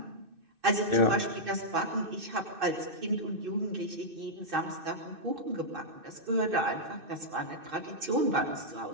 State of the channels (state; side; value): late; left; 2.6 ms